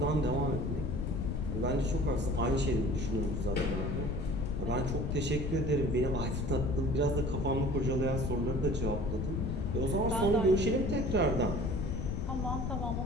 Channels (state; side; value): noise; left; rumble, 1 dB below the sound